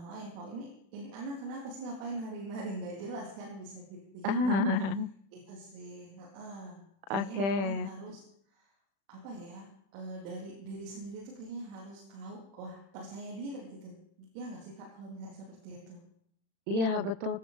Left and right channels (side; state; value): left; late; 36 ms